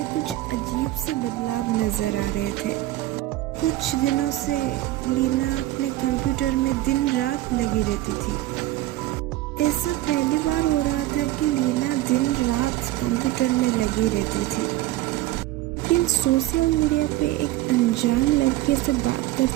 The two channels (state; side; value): quieter; left; 16.1 dB